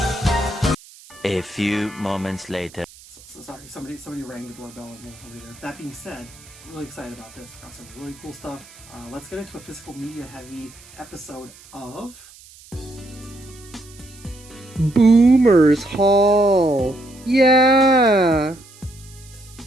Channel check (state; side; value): noise; right; hiss, 22 dB below the sound